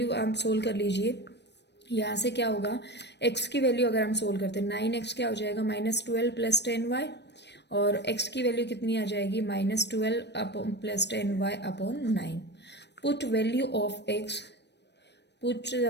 आप सोल्व कर लीजिए। यहाँ से क्या होगा, x की वैल्यू अगर हम सोल्व करते हैं 9x क्या हो जाएगा -12 प्लस 10y, और x की वैल्यू कितनी आ जाएगी -12 plus 10y/9। Put value of x, put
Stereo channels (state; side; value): late; right; 0.50 ms